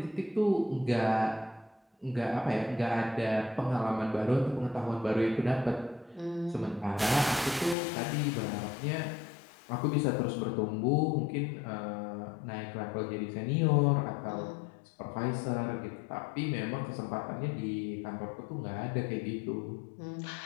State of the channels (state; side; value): drops out; right; at 7.8 s